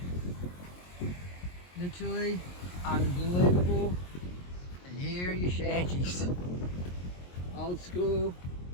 Literally unbelievable. And here are your shanties. Old school,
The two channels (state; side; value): late; right; 22 ms